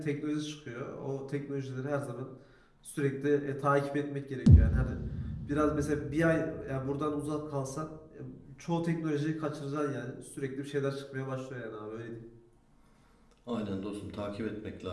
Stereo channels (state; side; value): identical; both; correlation 1.00